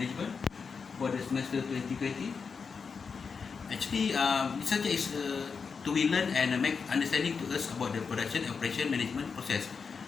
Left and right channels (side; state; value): right; quieter; 5.5 dB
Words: for the semester 2020. Actually, this subject is to be learned and make understanding to us about the production, operation, management process,